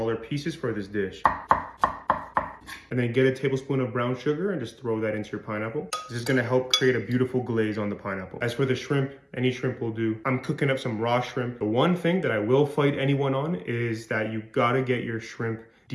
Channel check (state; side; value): identical; both; correlation 1.00